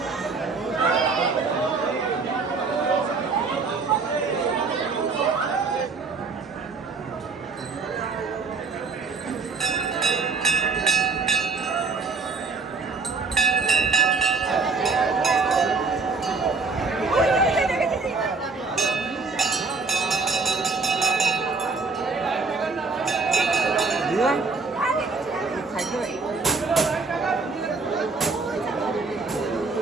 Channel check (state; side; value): quieter; left; 4.3 dB